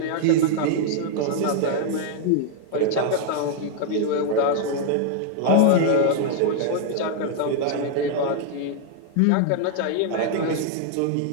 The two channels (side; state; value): both; different; correlation 0.00